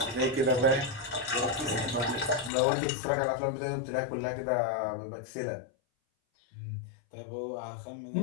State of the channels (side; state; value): right; drops out; at 2.5 s